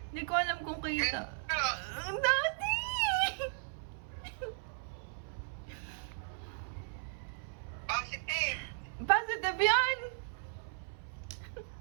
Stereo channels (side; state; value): left; silent; 54 dB below the other